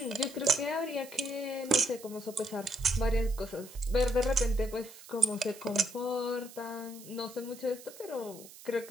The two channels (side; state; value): right; noise; hiss, 17 dB below the sound